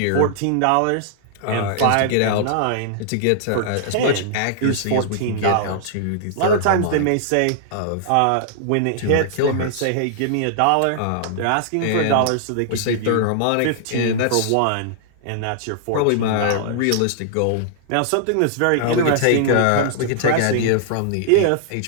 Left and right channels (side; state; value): both; different; correlation -0.01